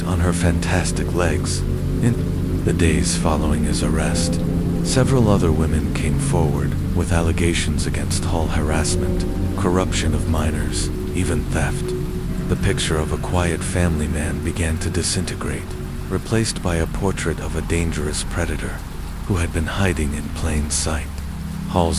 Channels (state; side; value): identical; both; correlation 1.00